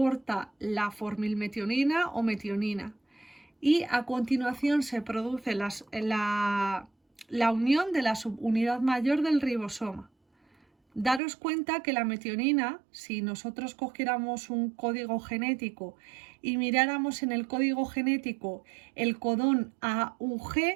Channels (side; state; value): left; drops out; at 11.2 s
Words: la formilmetionina o metionina y a continuación se produce la unión de la subunidad mayor del ribosoma. Daros cuenta que la metionina, si nosotros cogiéramos un código genético y miráramos en el código genético el codón AUG,